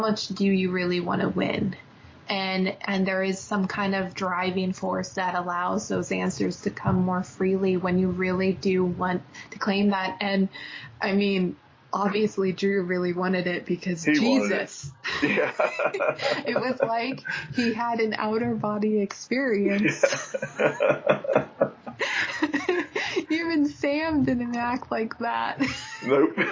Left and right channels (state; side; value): identical; both; correlation 1.00